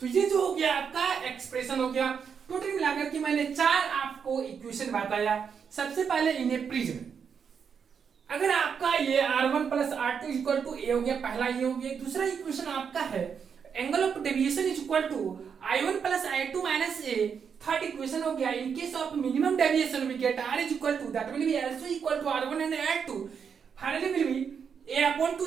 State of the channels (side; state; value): left; quieter; 6.8 dB